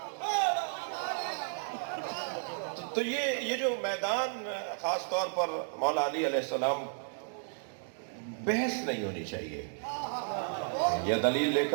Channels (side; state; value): left; silent; digital silence